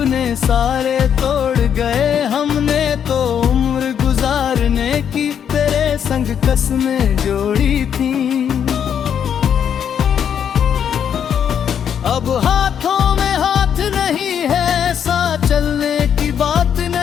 सारे तोड़ गए। हमने तो उम्र गुजारने की तेरे संग कसमें जोड़ी थी। अब हाथों में हाथ नहीं है, साथ चलने की बात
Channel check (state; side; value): quieter; right; 8.4 dB